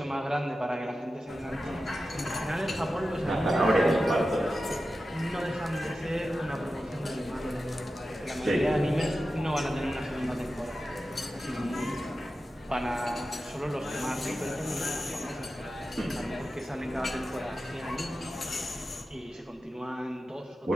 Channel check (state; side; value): normal; both; correlation 0.92